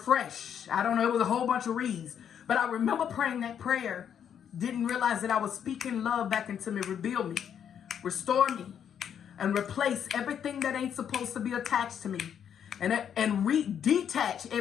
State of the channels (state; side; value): quieter; right; 8.6 dB